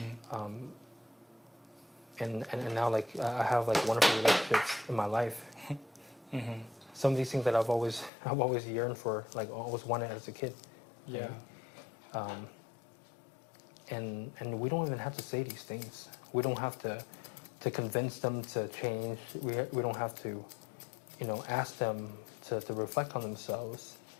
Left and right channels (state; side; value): drops out; right; at 8.1 s